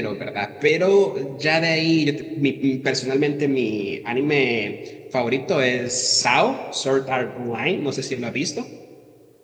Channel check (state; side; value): identical; both; correlation 1.00